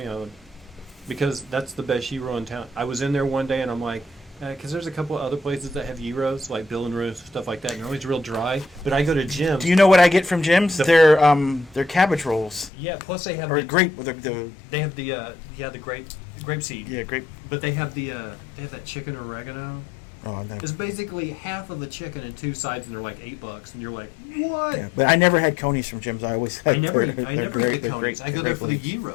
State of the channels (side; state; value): right; drops out; at 12.7 s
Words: Island, because that's the best gyro in town. I was in there one day, and I'm like, because there's a couple of other places that have gyros, like Bill and Ruth, stuff like that, and they're always real dry. But I go to Jim's. Do you know what I get from Jim's? They're cabbage rolls. Yeah. Plus they have Or the grape. They have the grape seed. Yeah, grape. But they have that chicken oregano. Oh, no. It's basically half of the chicken and two sides, and they're like $8, and you're like, what? Yeah, but I never had Coney's from Jim's. I always had I never their eat grape- the Coney's. I go there for the